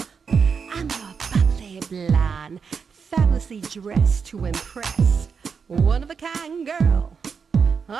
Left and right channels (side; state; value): left; quieter; 6.0 dB